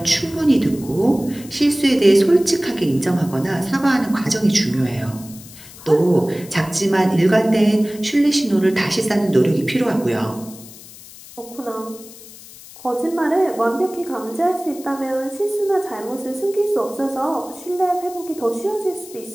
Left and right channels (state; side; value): noise; left; hiss, 18 dB below the sound